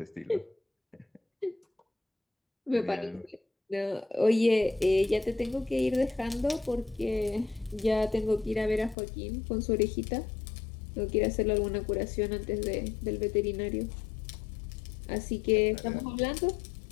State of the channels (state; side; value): drops out; right; at 9.0 s